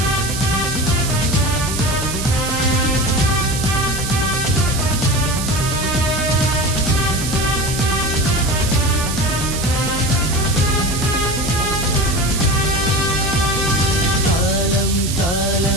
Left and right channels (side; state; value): right; noise; hiss, 6 dB below the sound